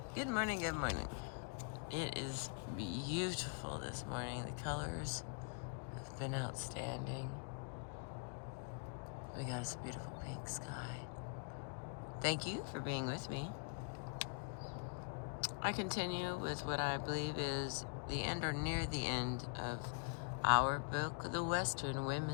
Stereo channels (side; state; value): right; quieter; 38.8 dB